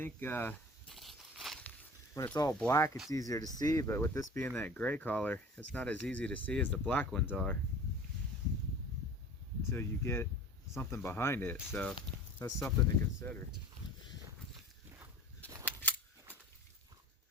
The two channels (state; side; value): normal; both; correlation 0.41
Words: when it's all black, it's easier to see, but with this being that gray color, it's not as easy to see as the black ones are until you get something behind it. So that's something to consider.